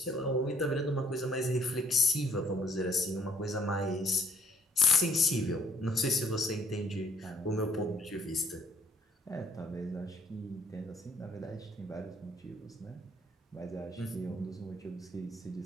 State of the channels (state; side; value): normal; both; correlation 0.63